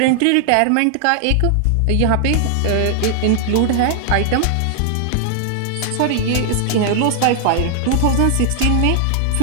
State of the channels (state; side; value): different; both; correlation 0.00